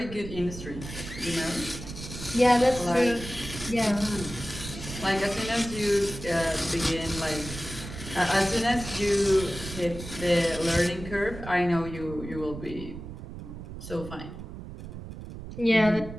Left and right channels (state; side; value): noise; right; rumble, 11 dB below the sound